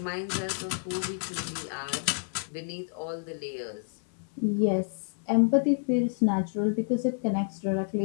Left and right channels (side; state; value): right; silent; 56 dB below the other